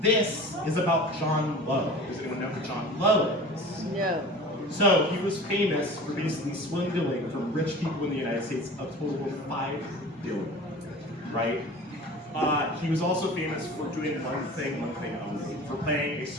This is about John Lowe. Does anyone know who John Lowe is? No. So he was famous for basically swindling from rich people in the United States a total of $5 billion, right? He was also famous for doing one thing only, for playing a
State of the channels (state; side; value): normal; both; correlation 0.39